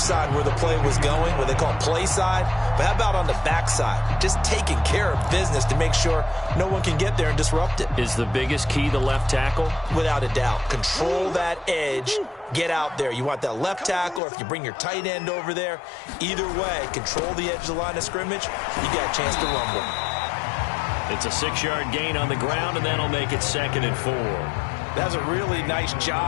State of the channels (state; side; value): drops out; right; at 14.2 s